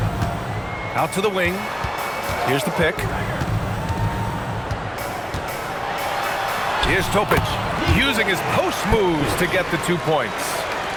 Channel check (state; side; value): identical; both; correlation 1.00